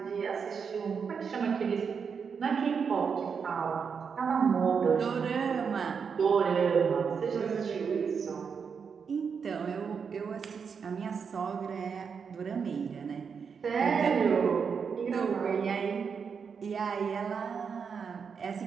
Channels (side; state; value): left; quieter; 6.2 dB